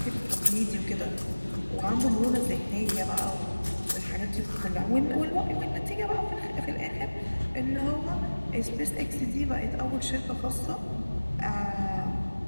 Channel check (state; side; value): inverted; both; correlation -1.00